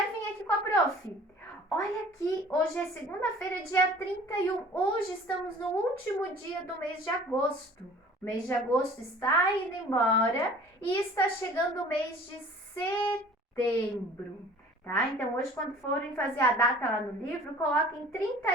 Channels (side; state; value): both; normal; correlation 0.48